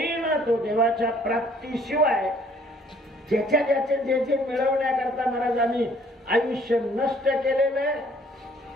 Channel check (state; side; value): normal; both; correlation 0.60